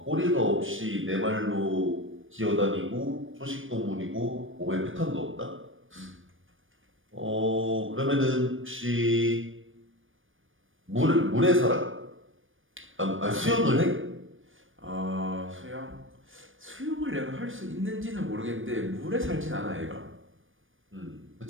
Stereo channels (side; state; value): left; late; 0.58 ms